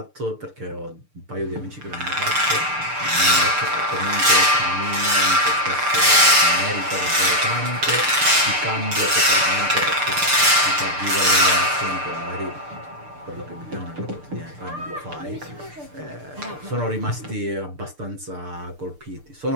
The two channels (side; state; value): left; late; 6.7 ms